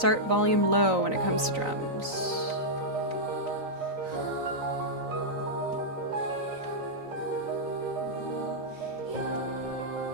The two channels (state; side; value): late; left; 3.9 ms